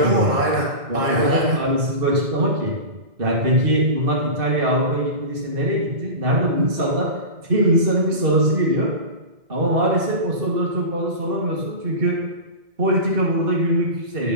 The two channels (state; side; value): late; left; 2.0 ms